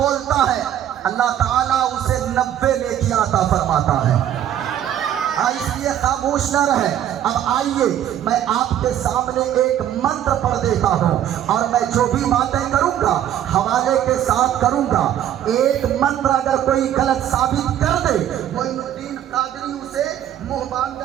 है, अल्लाह ताला उसे 90 नेकी अता फरमाता है। इसलिए खामोश न रहे। अब आइए मैं आपके सामने एक मंत्र पढ़ देता हूँ और मैं जो भी बातें करूँगा हवाले के साथ करूँगा। एक मंत्र अगर कोई गलत साबित कर दे, मोइनुद्दीन कादरी उसे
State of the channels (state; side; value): quieter; left; 10.9 dB